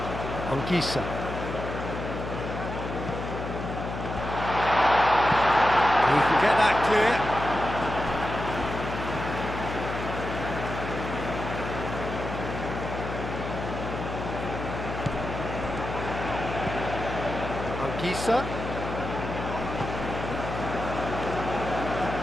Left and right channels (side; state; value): left; noise; hum, 6 dB below the sound